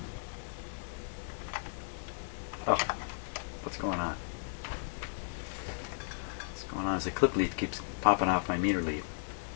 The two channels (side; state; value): right; silent; 54 dB below the other